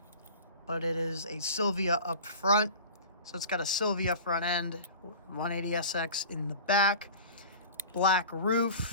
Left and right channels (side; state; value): both; inverted; correlation -0.38